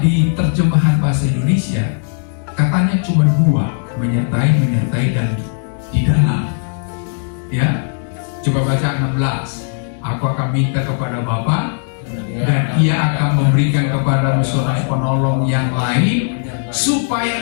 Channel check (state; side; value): silent; right; digital silence